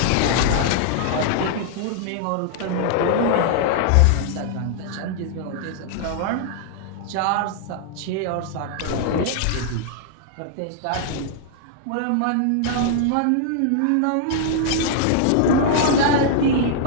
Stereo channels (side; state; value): both; different; correlation -0.01